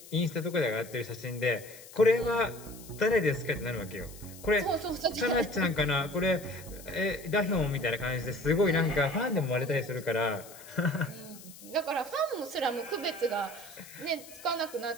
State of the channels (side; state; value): left; noise; hiss, 18 dB below the sound